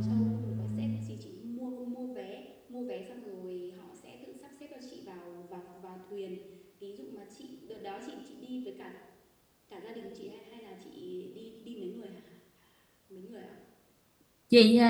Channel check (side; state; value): both; identical; correlation 1.00